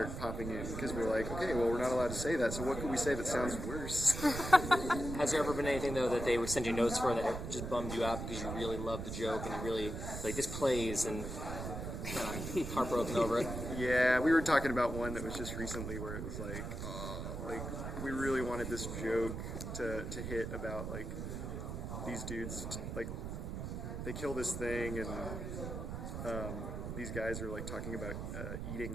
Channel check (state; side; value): noise; right; rumble, 5 dB below the sound